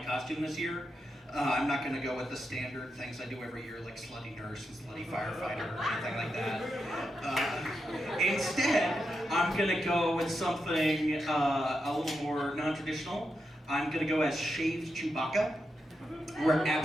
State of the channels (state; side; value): normal; both; correlation 0.86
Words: costume this year. I'm not going to go with the standard things I do every year, like slutty nurse and slutty firefighter or anything like that. Instead, I'm going to go with something a little more non-traditional. I'm going to go as shaved Chewbacca. Wear